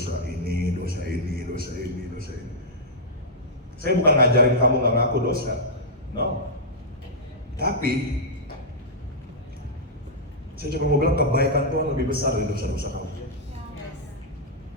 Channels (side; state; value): both; normal; correlation -0.10